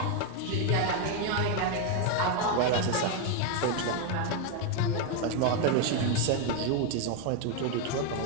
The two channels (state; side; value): different; both; correlation 0.01